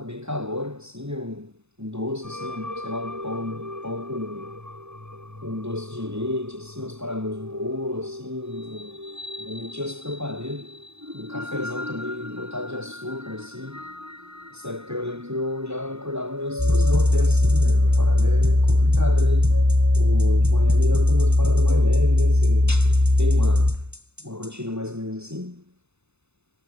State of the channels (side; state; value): left; late; 0.81 ms